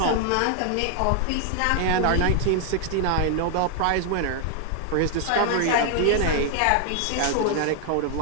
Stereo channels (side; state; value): both; different; correlation 0.00